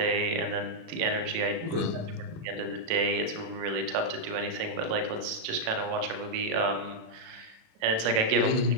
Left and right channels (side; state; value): left; late; 36 ms